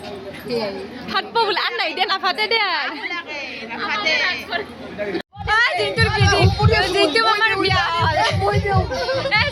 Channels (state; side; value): identical; both; correlation 1.00